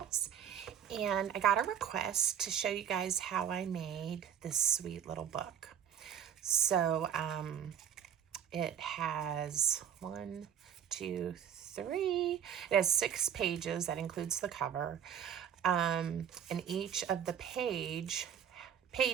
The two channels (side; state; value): left; quieter; 9.0 dB